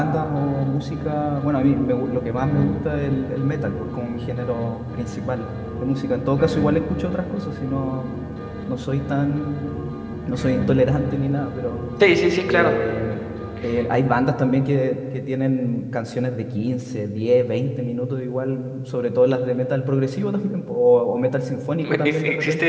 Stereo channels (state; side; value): identical; both; correlation 1.00